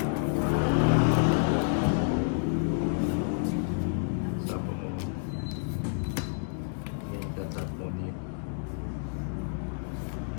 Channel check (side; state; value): right; silent; digital silence